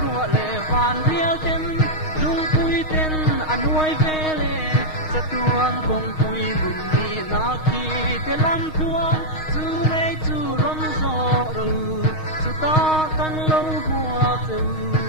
ru le van rial ten lung pui ten anuai ve le cha tuang kong pui lun ni na ki te lam tuang chu nei chu rom zo ru chu ta kan lo bua tu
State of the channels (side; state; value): right; late; 6.4 ms